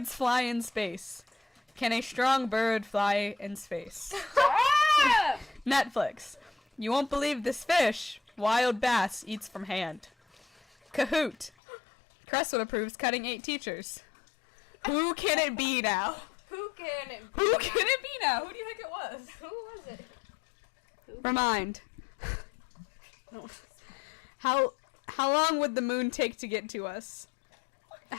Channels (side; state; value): right; drops out; at 11.5 s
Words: fly in space? Can a strong bird fly in space? Netflix. You won't believe this fish. Wild bass eats from hand. Kahoot. Crestwood approves cutting 8 teachers. Who can it be now? Who can it be? Who can it be now? Who do you think it was? Who was it? Remind. How long would the moon take to get to us?